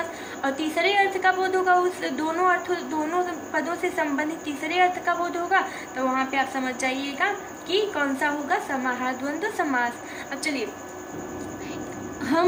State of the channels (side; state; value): both; identical; correlation 1.00